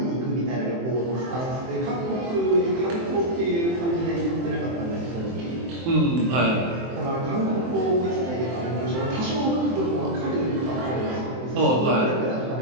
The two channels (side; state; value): left; late; 23 ms